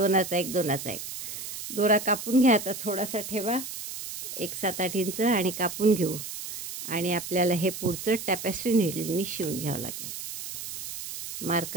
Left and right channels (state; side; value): noise; right; hiss, 8 dB below the sound